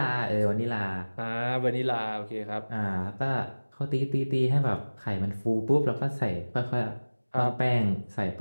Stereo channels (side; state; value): both; inverted; correlation -1.00